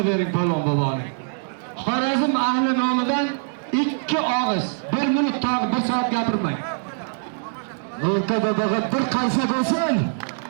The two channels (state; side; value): silent; left; digital silence